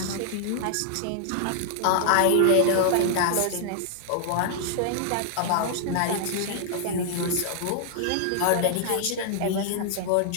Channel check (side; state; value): both; different; correlation -0.01